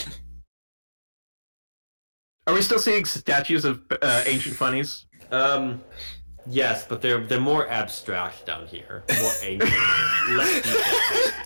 Are we still seeing statues of ancient Phunnies? Yes, but they're more abstract down here, more ancient, less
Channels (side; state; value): both; inverted; correlation -1.00